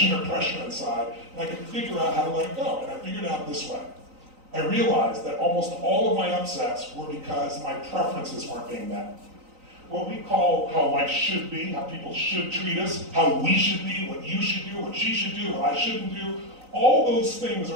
or pressure inside and I could figure out how to let it go? And I figured it out this way. I realized that almost all of my upsets were because my preferences weren't being met. What we call how life should be, how people should treat us, how we should be, what you should do, what she should do, what I shouldn't do, all those things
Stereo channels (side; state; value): left; late; 3.9 ms